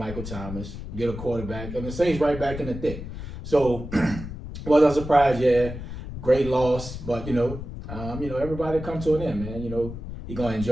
Thomas, get a quarterback, and the Saints right back in the thick. So, was I surprised? Yeah, great loss, but everybody come to an end, man. He's gonna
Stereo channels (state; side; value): noise; left; rumble, 9 dB below the sound